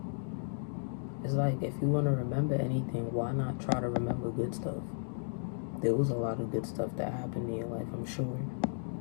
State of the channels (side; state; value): right; silent; digital silence